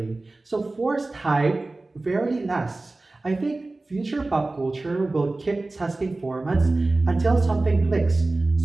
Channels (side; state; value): left; quieter; 3.1 dB